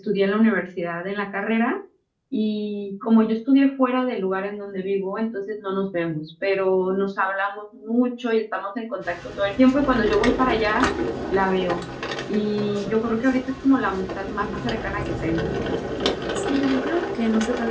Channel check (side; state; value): both; identical; correlation 1.00